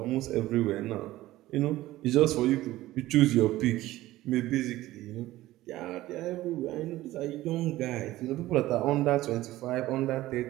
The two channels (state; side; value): quieter; left; 16.3 dB